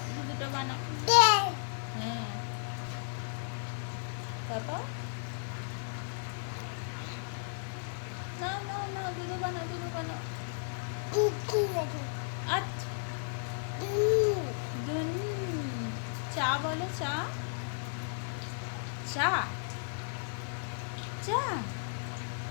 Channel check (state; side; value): silent; right; 55 dB below the other